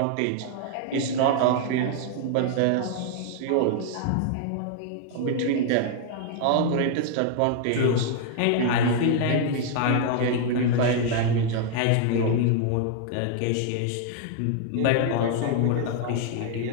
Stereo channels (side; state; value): both; different; correlation 0.00